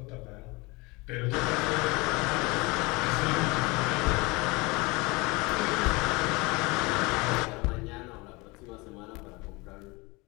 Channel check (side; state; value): right; quieter; 25.1 dB